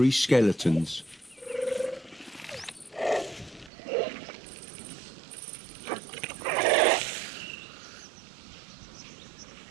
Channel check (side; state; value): left; drops out; at 3.7 s